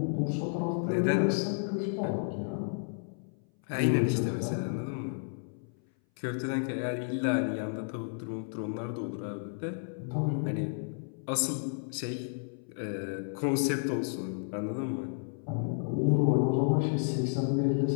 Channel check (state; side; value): silent; right; 57 dB below the other